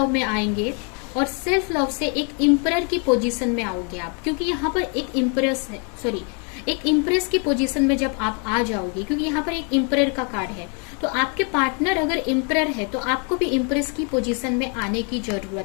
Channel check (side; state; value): right; quieter; 37.4 dB